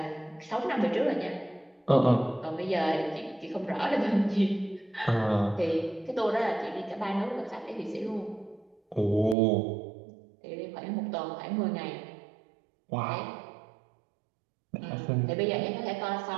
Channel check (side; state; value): left; drops out; at 9.3 s